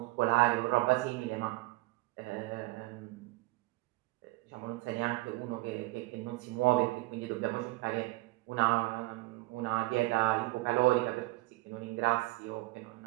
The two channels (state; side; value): quieter; left; 21.8 dB